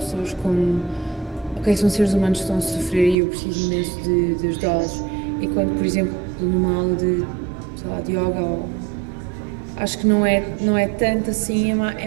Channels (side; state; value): left; drops out; at 3.2 s